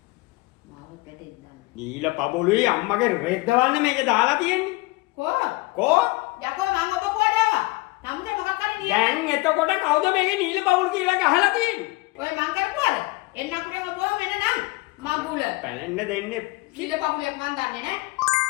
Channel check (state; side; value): quieter; right; 22.9 dB